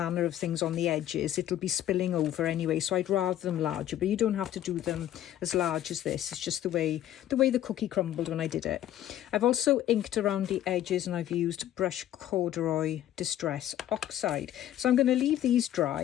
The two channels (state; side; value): quieter; right; 12.1 dB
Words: of things on the edges, it'll be spilling over anyway, so I'd rather them larger. But you don't have to do them as large as this. It's just the way the cookie crumbled when I did it. I've also inked around the edges, and I've used Brush Corduroy Distress Oxide. So I'm going to leave these